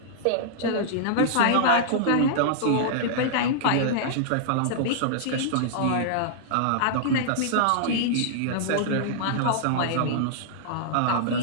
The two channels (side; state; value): both; different; correlation -0.02